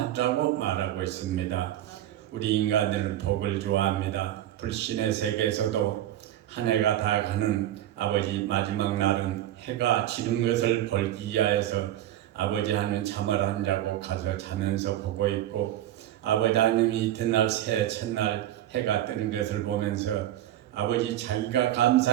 말하고 있습니다. 우리 인간들은 복을 좋아합니다. 불신의 세계에서도 한 해가 다 가는 아버지 마지막 날은 해가 지는 것을 벌기 위하여서 아버지 하는 잠을 안 자고 가서 자면서 보고 있고, 아버지 하나님이 이튿날 새해 첫날 해가 뜨는 것을 보면서 아버지 자기가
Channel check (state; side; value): quieter; left; 12.8 dB